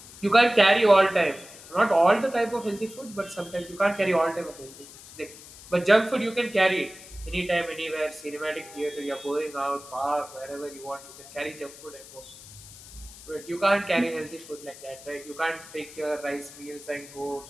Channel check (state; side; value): noise; left; hiss, 18 dB below the sound